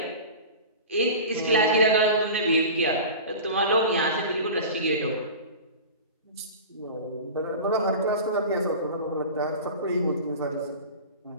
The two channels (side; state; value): both; inverted; correlation -0.33